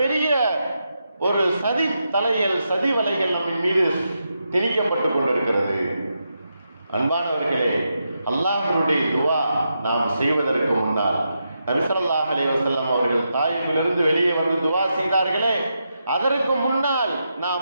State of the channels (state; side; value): inverted; both; correlation -0.85